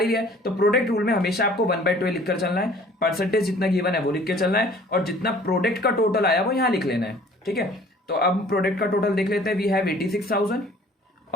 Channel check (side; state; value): both; normal; correlation 0.52